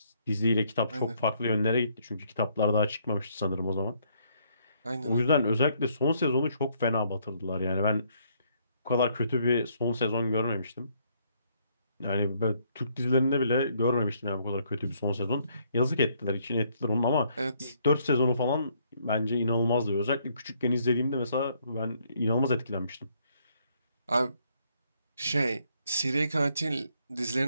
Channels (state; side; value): inverted; both; correlation -0.69